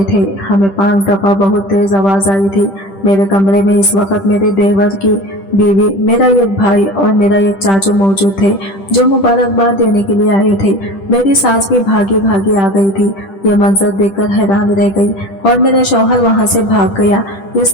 थे। हमें 5 दफा बहुत तेज आवाज आई थी। मेरे कमरे में इस वक्त मेरे देवर की बीवी, मेरा एक भाई और मेरा एक चाचू मौजूद थे, जो मुबारकबाद देने के लिए आए थे। मेरी सास भी भागी भागी आ गई थी। ये मंजर देखकर हैरान रह गई, और मेरा शौहर वहां से भाग गया।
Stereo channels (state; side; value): late; right; 10 ms